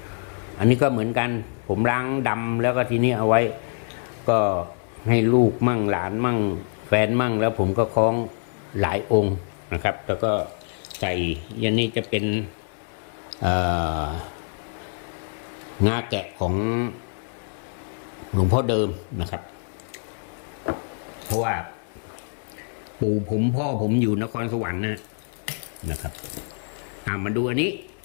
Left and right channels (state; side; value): silent; right; digital silence